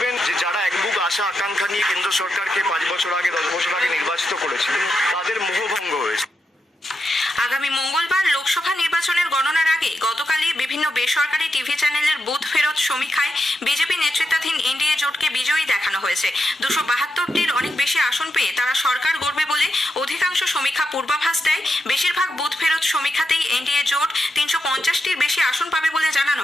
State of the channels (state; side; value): normal; both; correlation 0.86